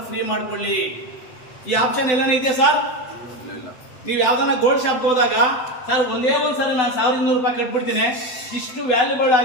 ಫ್ರೀ ಮಾಡ್ಕೊಳ್ಳಿ. ಈ ಆಪ್ಷನ್ ಎಲ್ಲಾನು ಇದೆಯಾ ಸರ್? ನೀವು ಯಾವ್ದನ್ನ ಗೋಲ್ಡ್ ಶಾಪ್ ಹೋದಾಗ ಸರ್ ಒಂದೇ ಒಂದ್ಸರಿ ನಾನು 1,200 ರೂಪಾಯಿ ಕಟ್ಬಿಡ್ತೀನಿ, ಇಷ್ಟು ವ್ಯಾಲ್ಯೂಬಲ್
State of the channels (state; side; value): late; right; 7.9 ms